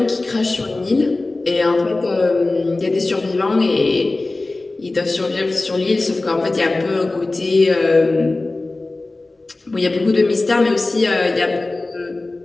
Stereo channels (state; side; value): quieter; right; 3.1 dB